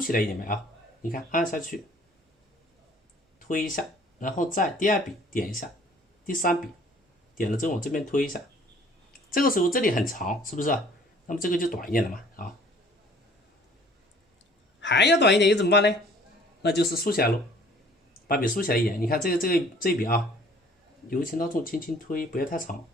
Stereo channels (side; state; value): both; normal; correlation 0.54